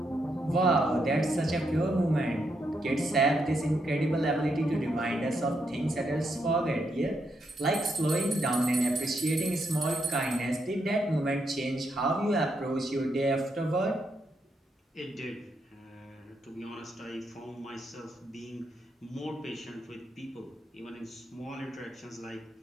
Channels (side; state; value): both; normal; correlation 0.79